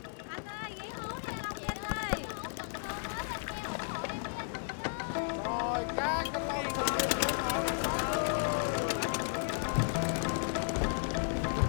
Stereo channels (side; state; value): right; silent; 55 dB below the other